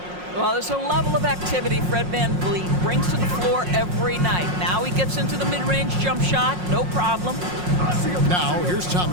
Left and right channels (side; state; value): left; late; 5.6 ms